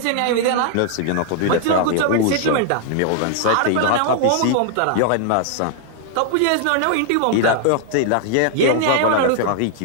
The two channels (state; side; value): different; both; correlation 0.00